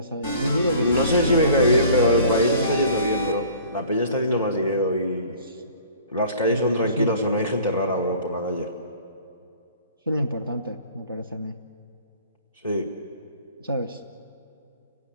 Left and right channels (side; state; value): both; inverted; correlation -0.50